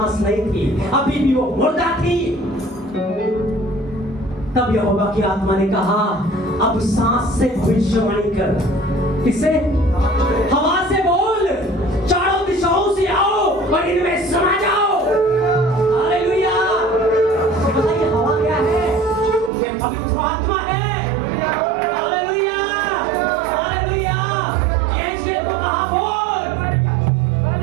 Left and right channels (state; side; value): drops out; left; at 19.5 s